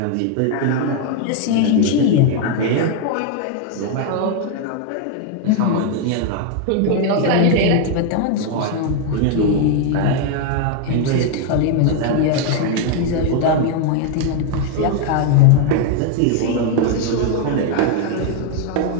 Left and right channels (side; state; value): both; different; correlation 0.01